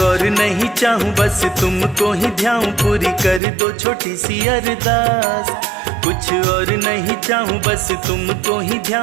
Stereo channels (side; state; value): left; drops out; at 3.4 s